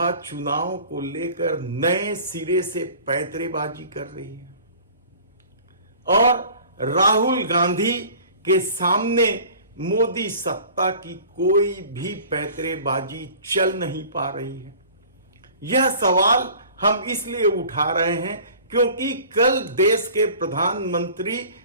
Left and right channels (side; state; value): both; inverted; correlation -0.45